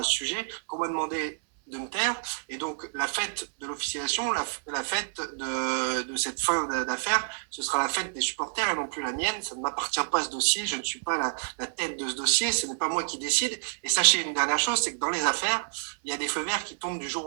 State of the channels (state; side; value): silent; left; 59 dB below the other